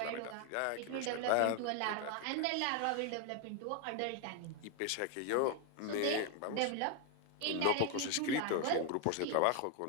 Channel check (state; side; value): different; both; correlation 0.01